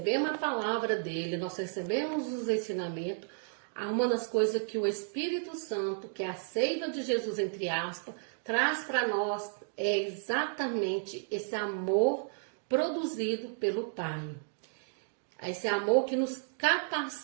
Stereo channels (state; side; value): silent; left; digital silence